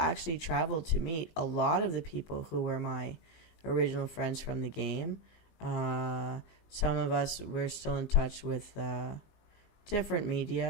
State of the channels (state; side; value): late; right; 19 ms